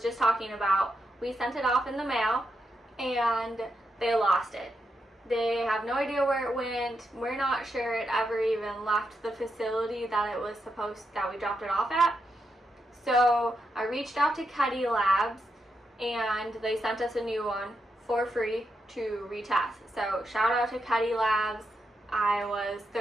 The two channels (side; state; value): both; normal; correlation 0.84